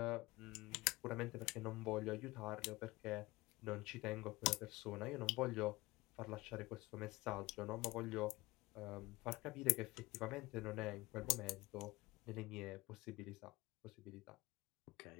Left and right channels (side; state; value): right; quieter; 21.1 dB